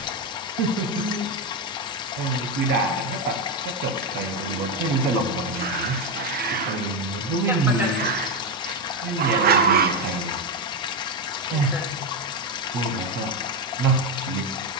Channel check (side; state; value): both; normal; correlation 0.09